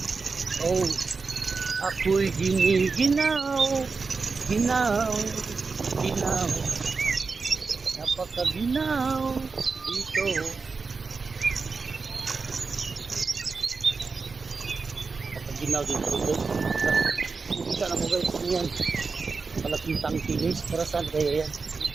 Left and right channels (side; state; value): left; quieter; 4.6 dB